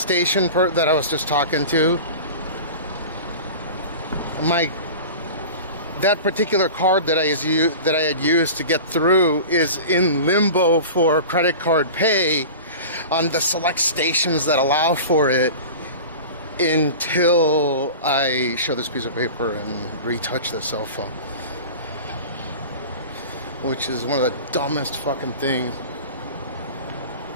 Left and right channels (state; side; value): inverted; both; correlation -0.35